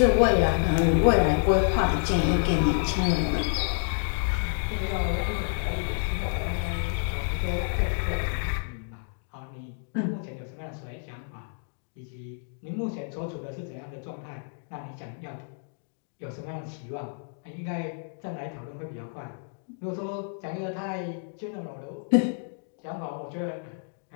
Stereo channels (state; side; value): silent; right; digital silence